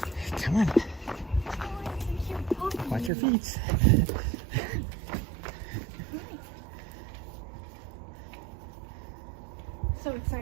Come on. Watch your feet. So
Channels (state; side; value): drops out; left; at 3.1 s